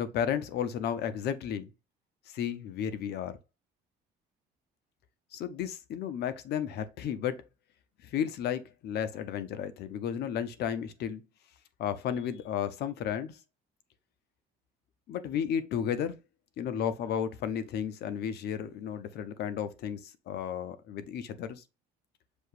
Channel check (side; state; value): right; quieter; 8.5 dB